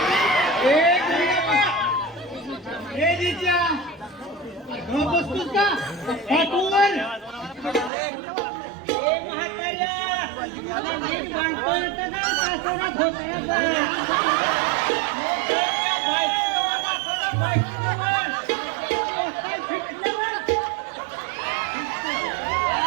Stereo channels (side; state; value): left; drops out; at 7.9 s